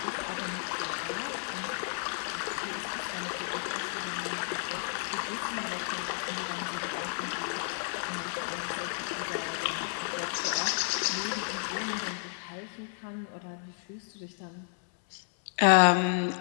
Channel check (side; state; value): right; silent; 56 dB below the other